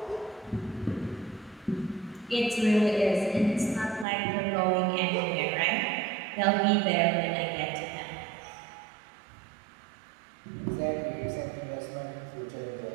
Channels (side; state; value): left; drops out; at 4.0 s